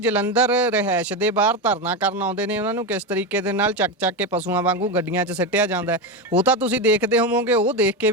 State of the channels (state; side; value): normal; both; correlation 0.14